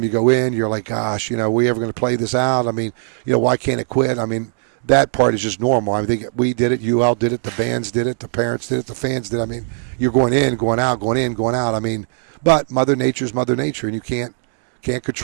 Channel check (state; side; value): silent; left; digital silence